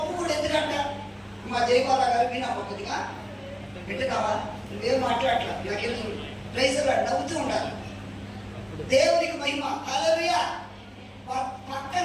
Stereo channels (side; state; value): both; identical; correlation 1.00